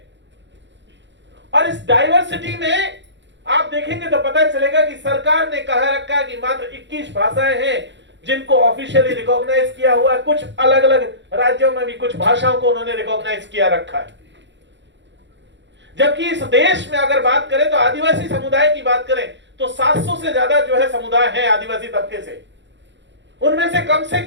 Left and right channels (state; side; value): late; left; 0.53 ms